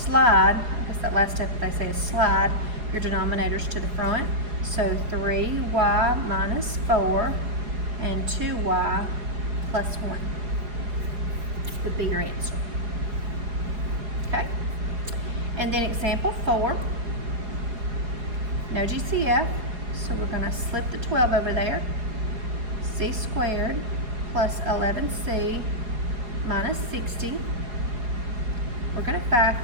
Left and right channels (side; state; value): left; late; 4.7 ms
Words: that's that last step they say is slide your denominators to the front. So 3y minus 4 and 2y plus 1 would be your answer. Okay, and then example 4, no GCF, so we're going to slip the 12 over there. C squared plus 11c minus 60. We're going to